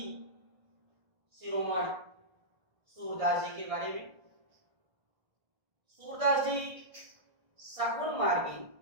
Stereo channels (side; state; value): left; late; 1.6 ms